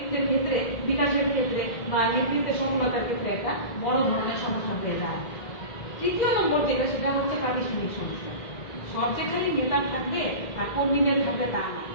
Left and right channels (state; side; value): late; right; 2.0 ms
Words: ক্ষেত্রে বিকাশের ক্ষেত্রে বা নেতৃত্বের সফলতার ক্ষেত্রে একটা বড় ধরনের সমস্যা হয়ে যায়। তৃতীয় নম্বর যেটা সেটা হচ্ছে প্রাতিষ্ঠানিক সমস্যা। সব যেখানে নেতা থাকবে আর কর্মীদের থাকবে তা না,